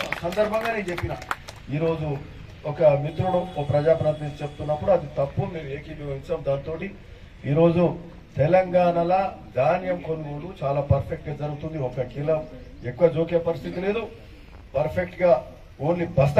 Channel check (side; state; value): both; identical; correlation 1.00